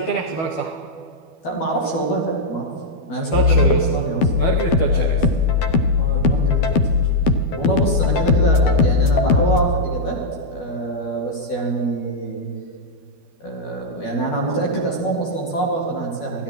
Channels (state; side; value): late; right; 12 ms